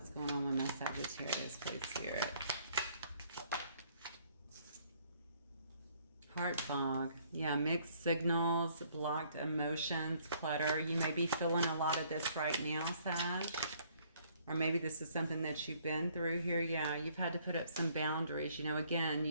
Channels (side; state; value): both; inverted; correlation -0.63